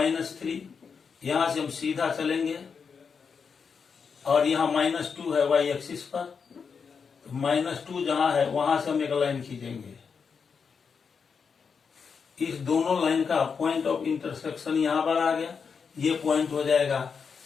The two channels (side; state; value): right; quieter; 5.9 dB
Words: यहाँ से हम सीधा चलेंगे और यहाँ -2 है y एक्सिस पर, -2 जहाँ है वहां से हम एक लाइन खींचेंगे, इस दोनों लाइन का पॉइंट ऑफ इंटरसेक्शन यहाँ पर आ गया, ये पॉइंट हो जाएगा